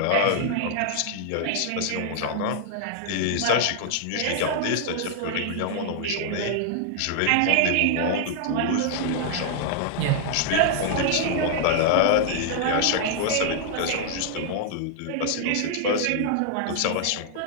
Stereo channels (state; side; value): different; both; correlation -0.01